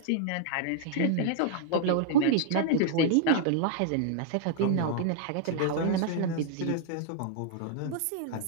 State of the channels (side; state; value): both; different; correlation -0.01